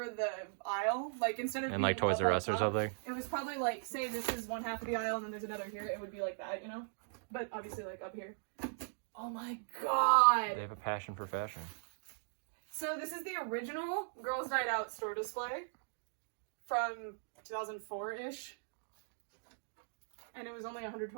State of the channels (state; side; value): silent; left; digital silence